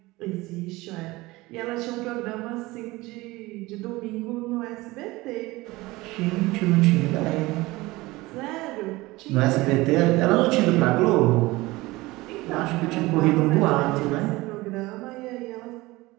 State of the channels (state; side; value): quieter; left; 20.6 dB